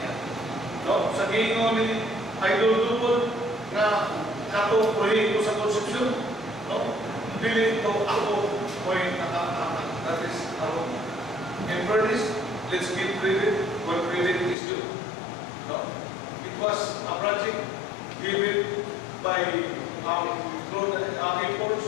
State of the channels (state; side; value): drops out; right; at 14.6 s